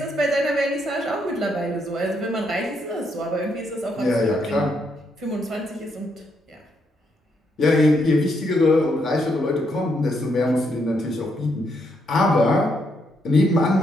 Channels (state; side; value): normal; both; correlation 0.76